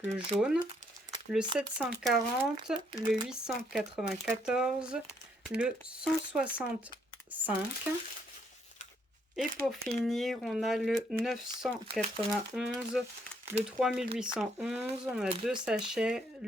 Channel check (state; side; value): normal; both; correlation 0.71